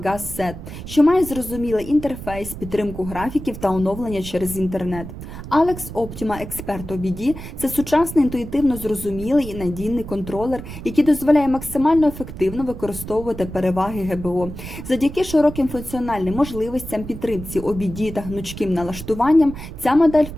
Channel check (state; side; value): noise; right; rumble, 11 dB below the sound